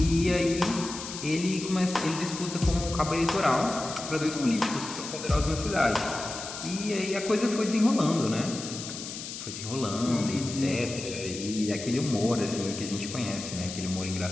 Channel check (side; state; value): left; noise; hiss, 9 dB below the sound